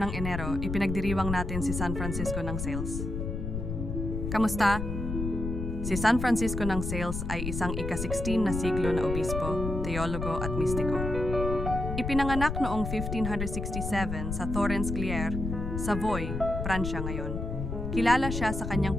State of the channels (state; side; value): noise; left; rumble, 4 dB below the sound